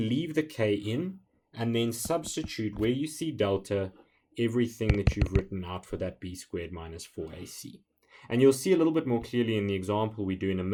leave the k in, and then substitute where you see delta everything that you've written out for that b squared minus 4ac. And you'll see a little bit more clearly in the example we do in a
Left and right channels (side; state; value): both; identical; correlation 1.00